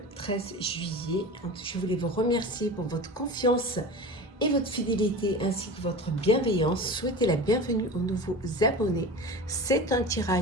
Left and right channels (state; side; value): normal; both; correlation 0.32